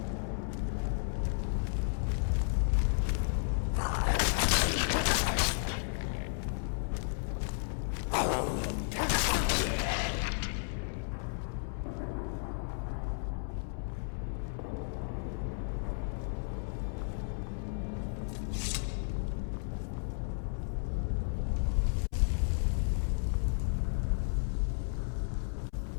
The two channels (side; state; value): right; silent; 56 dB below the other